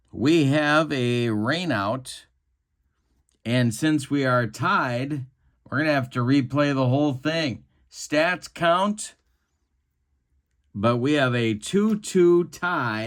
we have a rain out, and since we are tied, we're going to have to replay the whole thing. Stats count, but we have a 2-2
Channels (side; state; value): both; identical; correlation 1.00